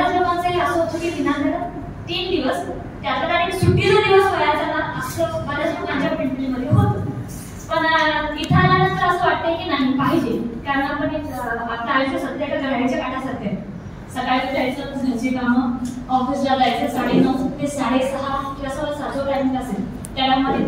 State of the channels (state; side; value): identical; both; correlation 1.00